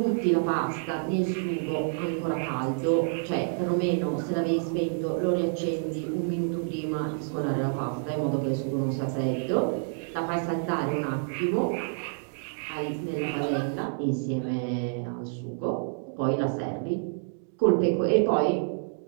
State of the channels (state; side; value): silent; left; digital silence